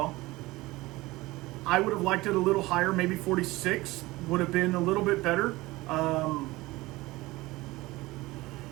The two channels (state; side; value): quieter; left; 19.9 dB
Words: I would have liked it a little higher, maybe 46 would have been a little bit better.